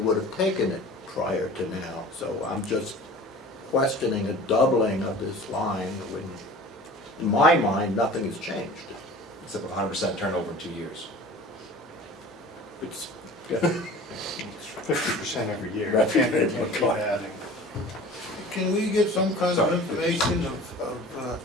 have taken it prior to now. So I'm just questioning a doubling of this line when, in my mind, nothing has changed. Except 100% turnover in 2 years. It's 50% every year. Right. Can't keep adding. Can we get some kind of information of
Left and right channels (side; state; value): both; normal; correlation 0.42